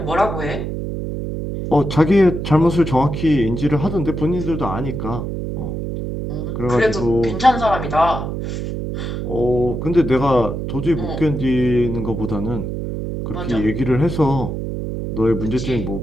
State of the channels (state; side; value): noise; right; hum, 4 dB below the sound